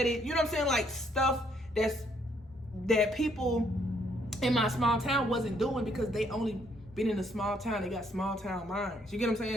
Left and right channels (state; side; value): normal; both; correlation 0.69